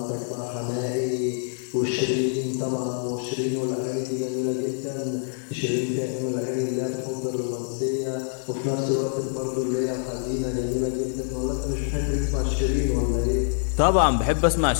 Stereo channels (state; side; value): silent; right; digital silence